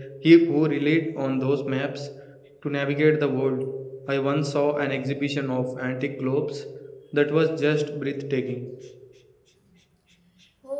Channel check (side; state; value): both; identical; correlation 1.00